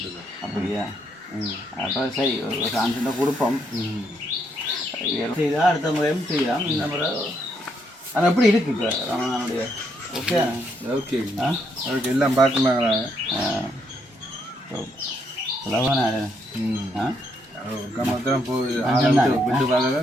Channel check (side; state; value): both; normal; correlation 0.75